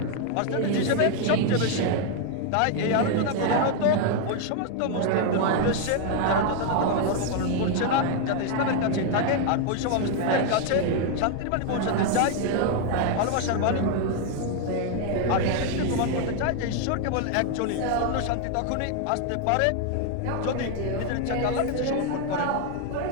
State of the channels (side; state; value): both; different; correlation 0.00